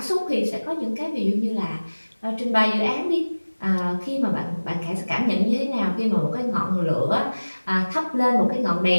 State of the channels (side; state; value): both; inverted; correlation -1.00